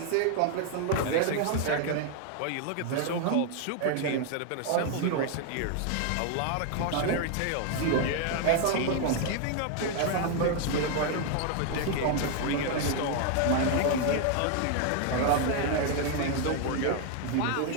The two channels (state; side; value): different; both; correlation 0.00